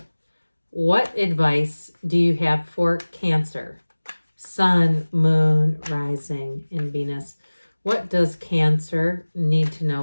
What advice do you have for Cancer? Sun, Moon, Rising, and Venus. What does Cancer need to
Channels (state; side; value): inverted; both; correlation -1.00